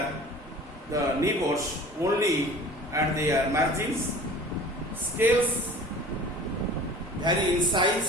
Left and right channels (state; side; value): normal; both; correlation 0.43